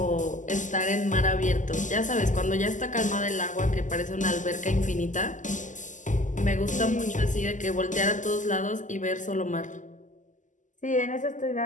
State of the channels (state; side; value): late; right; 0.37 ms